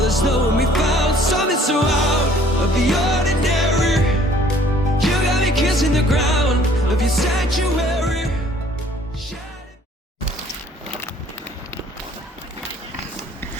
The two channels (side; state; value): both; normal; correlation 0.57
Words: knowing we found something so out of the ordinary. You got me kissing the ground of your sanctuary.